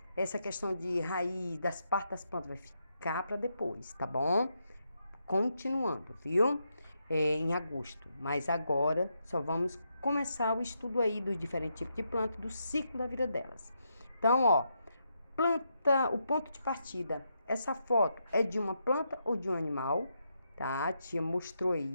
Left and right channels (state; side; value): inverted; both; correlation -0.82